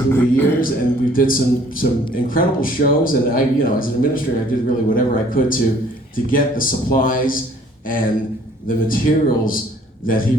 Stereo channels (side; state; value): both; normal; correlation 0.58